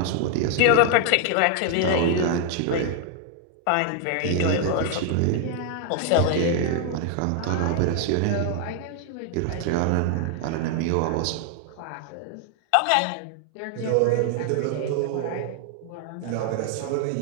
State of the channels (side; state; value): both; different; correlation 0.00